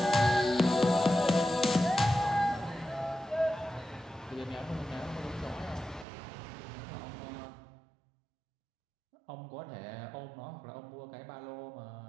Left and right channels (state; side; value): drops out; left; at 6.1 s